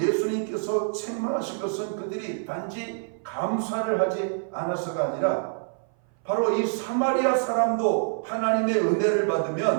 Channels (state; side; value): silent; left; 58 dB below the other